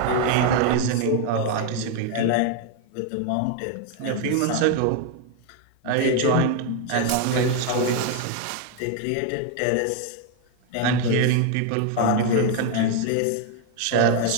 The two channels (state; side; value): different; both; correlation 0.01